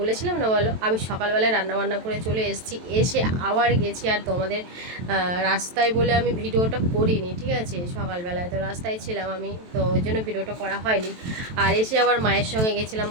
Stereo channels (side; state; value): left; late; 23 ms